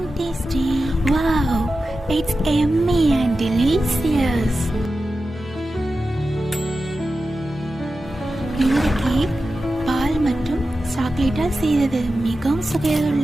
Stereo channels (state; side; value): normal; both; correlation 0.92